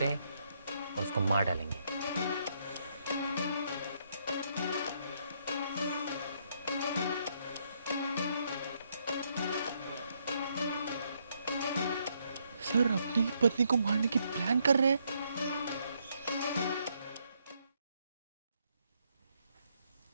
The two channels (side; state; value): both; inverted; correlation -0.74